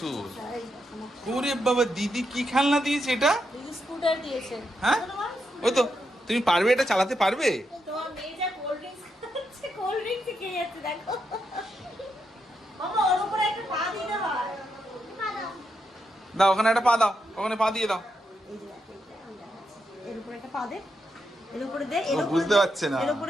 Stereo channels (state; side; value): normal; both; correlation 0.83